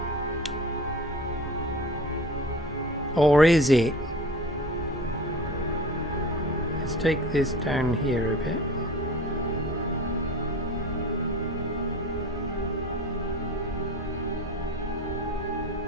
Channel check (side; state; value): both; normal; correlation 0.38